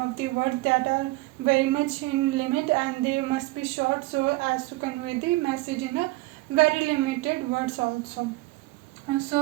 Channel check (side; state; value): left; quieter; 20.5 dB